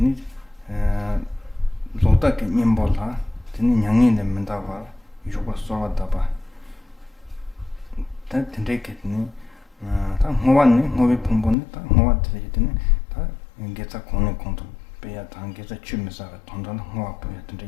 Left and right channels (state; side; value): drops out; right; at 11.6 s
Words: 로다게 님볼라 드니 양이 내면다봐 유고 소왔다봐 다 된대겠니 다 호완니 호비 풍분니 다 호와드리더니 다 인게자 공내 공도 배야 단계자 취미사가 돈돈 호와부야